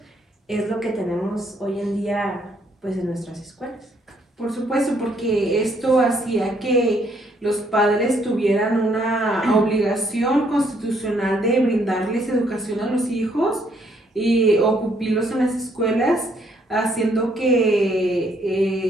es lo que tenemos hoy en día pues en nuestras escuelas. Por supuesto, porque esto hacía que los padres tuvieran una obligación constitucional de brindarles educación a los hijos y ocuparlos en las escuelas, haciendo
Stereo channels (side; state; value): both; normal; correlation 0.69